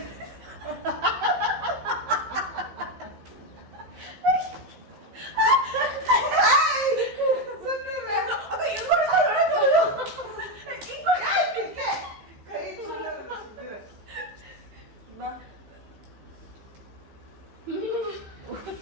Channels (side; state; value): left; late; 15 ms